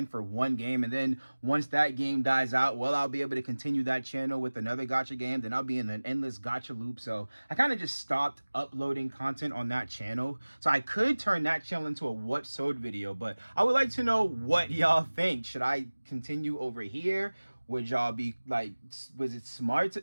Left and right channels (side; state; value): both; inverted; correlation -1.00